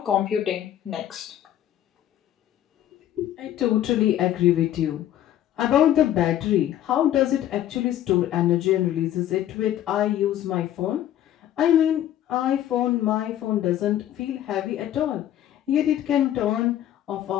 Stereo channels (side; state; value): right; quieter; 11.9 dB